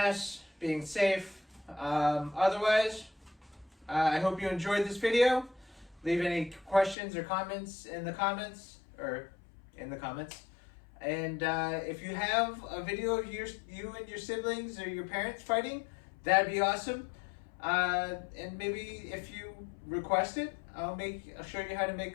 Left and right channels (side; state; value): right; drops out; at 7.0 s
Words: being safe. Otherwise, I hope you enjoyed this video. Leave any questions or comments in the comments. And if you have a video of you and your siblings or your parents fighting, that'd be awesome. And maybe if you request it, I'll show you how to make